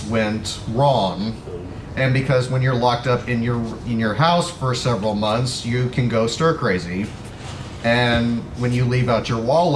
went wrong. And because when you're locked up in your house for several months, you can go stir crazy. And when you leave out your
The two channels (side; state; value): both; identical; correlation 1.00